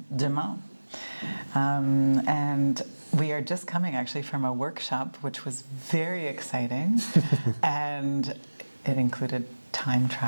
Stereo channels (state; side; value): inverted; both; correlation -1.00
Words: Demain. And we are just coming actually from a workshop, which was very exciting, and it included time